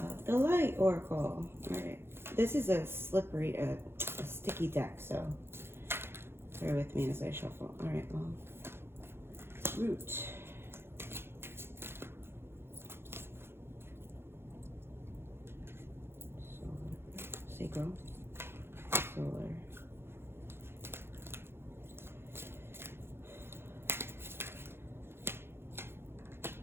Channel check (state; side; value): late; left; 0.11 ms